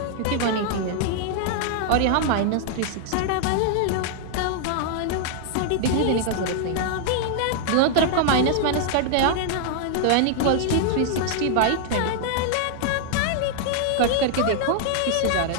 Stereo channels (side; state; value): both; different; correlation 0.00